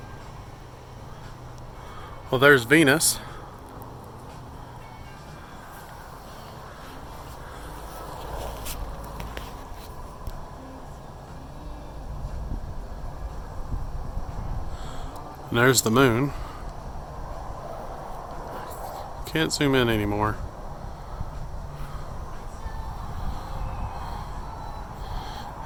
Well, there's Venus. And there's the moon. Can't zoom in anymore.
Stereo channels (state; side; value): identical; both; correlation 1.00